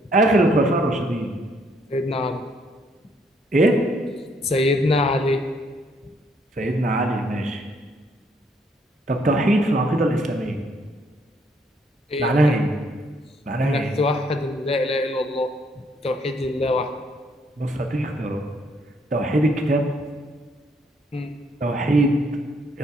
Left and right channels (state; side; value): normal; both; correlation 0.69